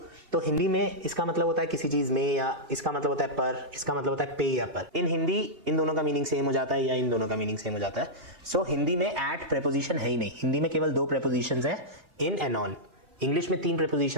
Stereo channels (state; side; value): late; left; 2.8 ms